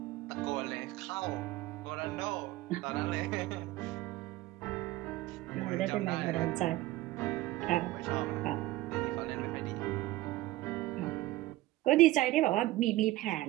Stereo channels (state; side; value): quieter; left; 17.3 dB